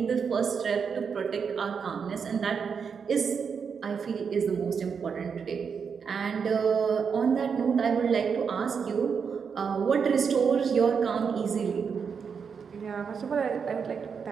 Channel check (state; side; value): quieter; left; 6.3 dB